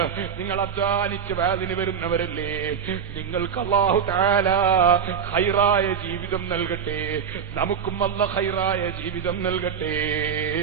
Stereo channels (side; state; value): left; quieter; 7.4 dB